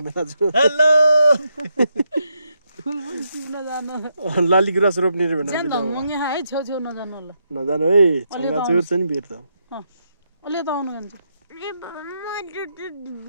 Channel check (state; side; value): inverted; both; correlation -0.81